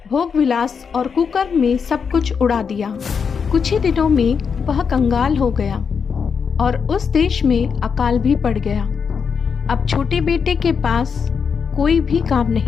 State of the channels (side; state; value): right; quieter; 6.2 dB